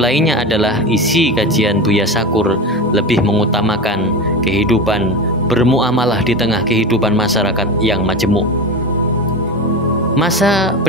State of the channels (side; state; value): both; normal; correlation 0.24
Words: adalah isi kajian Buya Sakur lebih mengutamakan kehidupan bermuamalah di tengah kehidupan masyarakat yang majemuk. Masa